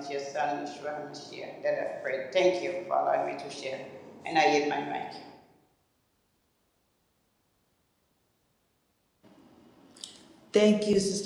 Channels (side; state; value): both; identical; correlation 1.00